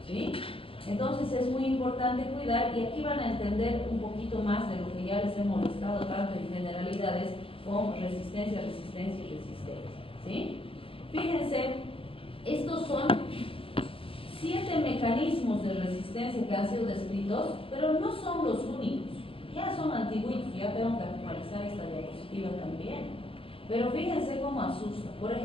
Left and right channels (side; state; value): right; late; 0.26 ms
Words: ¿sí? Entonces es muy importante cuidar, y aquí van a entender un poquito más de lo que ya les he molestado tanto en generalidades con resistencia, ¿sí? Fíjense, estos son 7 mecanismos de resistencia que han sido descritos, pero no son los únicos. Ya son antiguitos, ya tengo que actualizar esta diapositiva también. Pero fíjense cómo asusta. Por